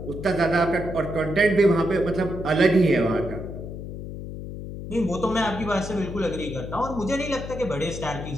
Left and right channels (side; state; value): left; noise; hum, 9 dB below the sound